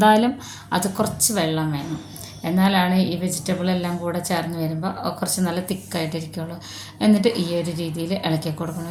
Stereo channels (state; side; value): identical; both; correlation 1.00